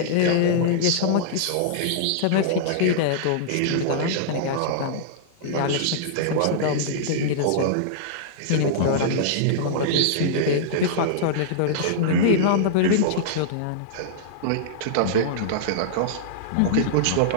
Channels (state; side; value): different; both; correlation -0.02